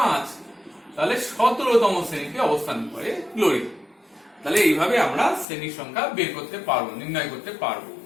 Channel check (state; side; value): drops out; right; at 5.5 s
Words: তাহলে 17তম শ্রেণীতে অবস্থান করে ক্লোরিন। তাহলে এইভাবে আমরা শ্রেণীর সংখ্যা বের করতে পারবো, নির্ণয় করতে পারবো।